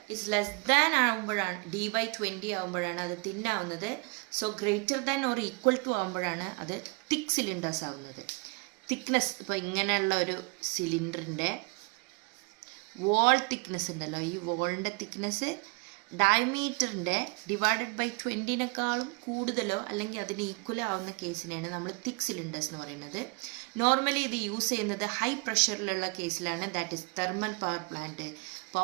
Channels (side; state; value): left; quieter; 29.6 dB